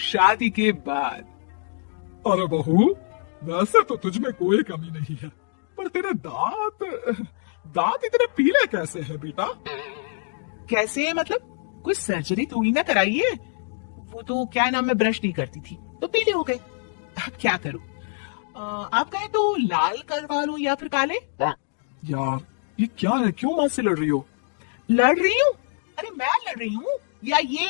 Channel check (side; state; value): right; silent; digital silence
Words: के बाद अरे बहू, वैसे तो तुझमें कोई कमी नहीं है, पर तेरे दांत दांत इतने पीले कैसे हैं बेटा? कैसे है मतलब? कोई सर्जरी थोड़ी ना कराई है। वो तो क्या नाम, मैं ब्रश नहीं करती थी तो पीले हो गए। अब क्या करूं? आप कहे तो लाल करवा लूं या फिर काले? यार ये क्या है, क्यों माँ से लड़ रही हो? लड़ रही हूँ? अरे मैं लड़ रही हूँ या